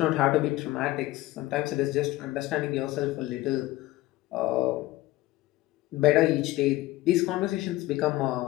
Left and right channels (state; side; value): quieter; right; 17.6 dB